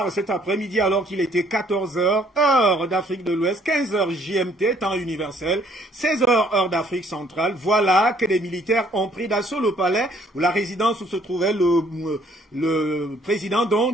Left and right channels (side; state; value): both; normal; correlation 0.63